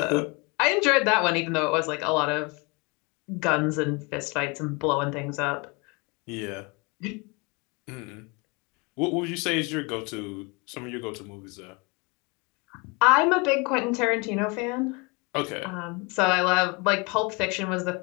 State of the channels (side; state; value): right; quieter; 29.2 dB